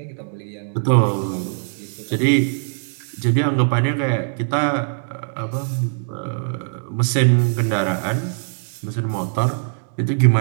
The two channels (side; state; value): left; silent; digital silence